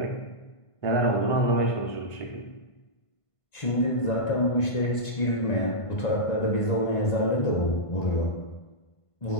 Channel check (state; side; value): late; right; 1.5 ms